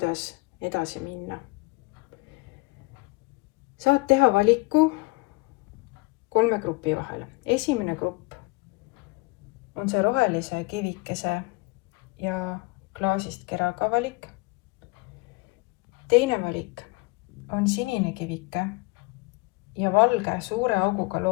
edasi minna. Saad teha valiku 3 grupi vahel. Esimene grupp on see rohelise kivikese ja klaasist keraga valik. Teine valik on sinine kivike ja valge suure auguga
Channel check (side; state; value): right; quieter; 23.8 dB